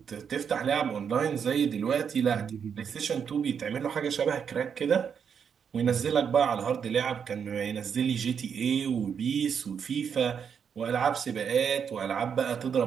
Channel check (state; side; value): quieter; left; 7.2 dB